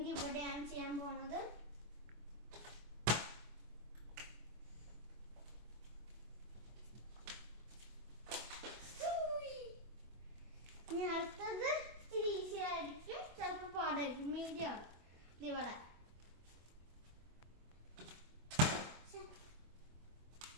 ഇവിടെയാണ് ചെയ്യാൻ പോണത്. ഇനി അടുത്തത് ഇച്ചിരി ഈസി ആയിരിക്കും, ചിലപ്പോൾ പാടായിരിക്കും. മീഡിയം ആണ് ഇവിടെ.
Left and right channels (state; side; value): late; left; 24 ms